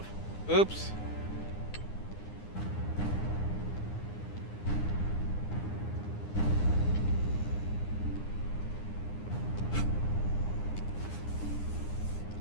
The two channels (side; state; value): right; late; 9.8 ms